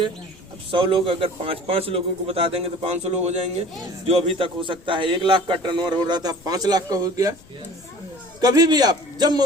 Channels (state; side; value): noise; left; rumble, 26 dB below the sound